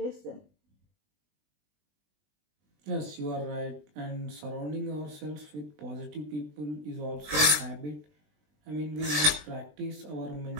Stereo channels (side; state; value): left; late; 20 ms